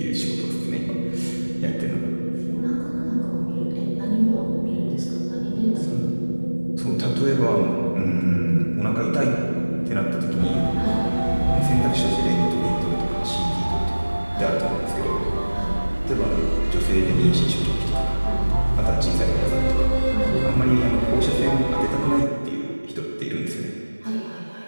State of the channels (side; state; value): both; inverted; correlation -1.00